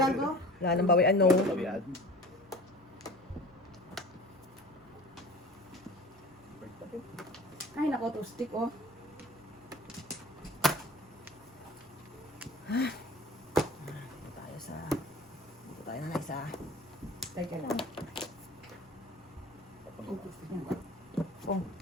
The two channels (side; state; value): both; normal; correlation 0.41